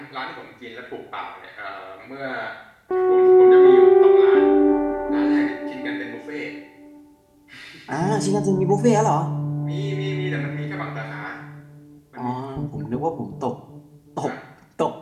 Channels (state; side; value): identical; both; correlation 1.00